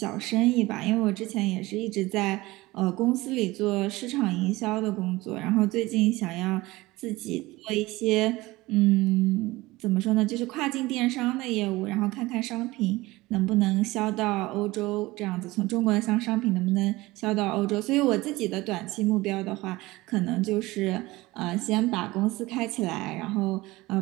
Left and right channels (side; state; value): left; quieter; 20.0 dB